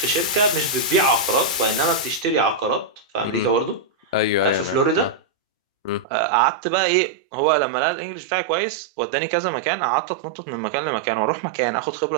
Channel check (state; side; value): drops out; left; at 6.1 s